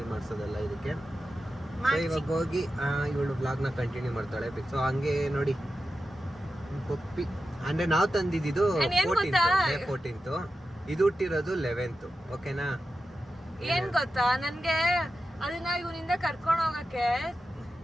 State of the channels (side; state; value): both; normal; correlation 0.91